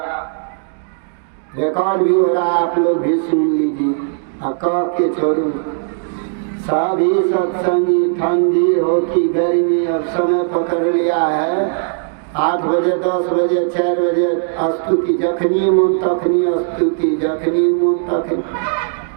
रिकॉर्ड भी हो रहा है, आप लोग भी सुन लीजिए। कह के छोड़ू सभी सत्संगी ठंडी हो कि गर्मी अब समय पकड़ लिया है। 8 बजे 10 बजे 4 बजे स्तुति जखनी मन तखनी स्तुति जखनी मन तखनी।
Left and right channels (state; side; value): silent; left; digital silence